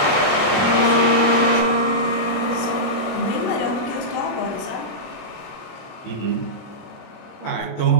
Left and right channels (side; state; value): right; late; 23 ms